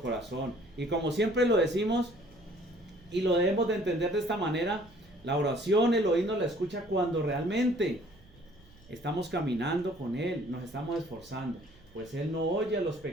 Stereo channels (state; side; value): noise; right; hum, 27 dB below the sound